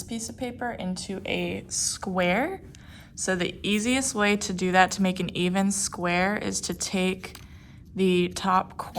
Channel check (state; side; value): identical; both; correlation 1.00